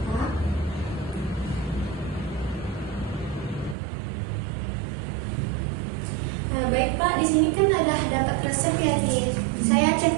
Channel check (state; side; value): drops out; left; at 3.8 s